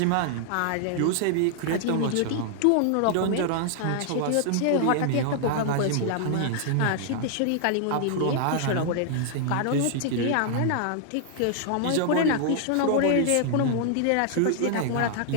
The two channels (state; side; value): different; both; correlation 0.00